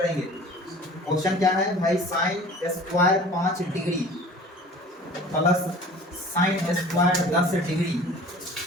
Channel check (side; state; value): both; normal; correlation 0.44